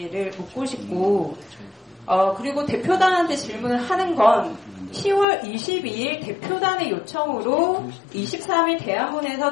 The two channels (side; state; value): right; drops out; at 5.2 s